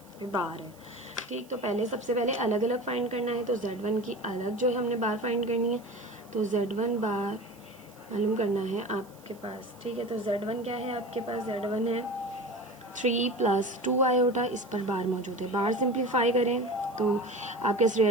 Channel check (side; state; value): right; noise; hiss, 26 dB below the sound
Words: बार है। ठीक, तो पहले सबसे पहले अलग अलग फाइंड करना है, तो Z1 की अलग जो है हमने बार फाइंड करनी है, तो Z1 बार मालूम करना है आपके पास। ठीक है, तो Z1 क्या है आपके पास, Z1 है 3 + 2 आयोटा, इस पर बार मौजूद है। बार सिंप्लीफाई करें तो आपके